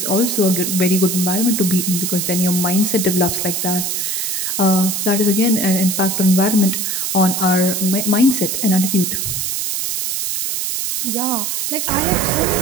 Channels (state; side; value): noise; right; hiss, 1 dB below the sound